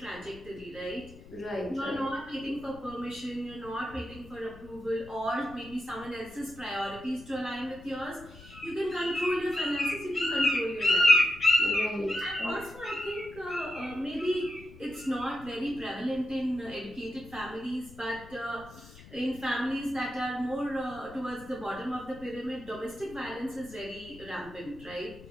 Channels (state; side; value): noise; left; rumble, 18 dB below the sound